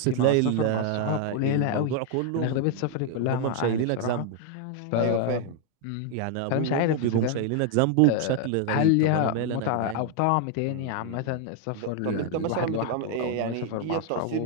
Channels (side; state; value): both; different; correlation 0.00